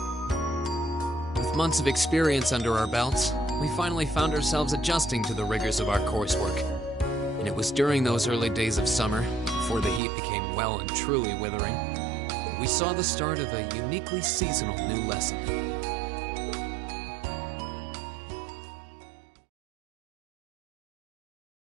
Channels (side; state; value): left; drops out; at 10.0 s